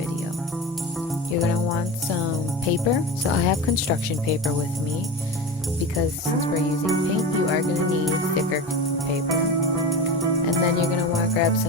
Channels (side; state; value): both; normal; correlation 0.28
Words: You're going to want some paper. So I have construction paper with me because since we're using paint, you are going to need thicker paper. And then you're going to want to grab